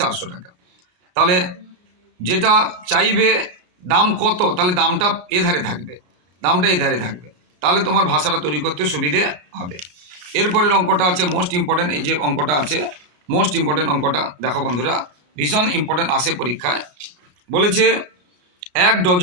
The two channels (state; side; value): late; left; 34 ms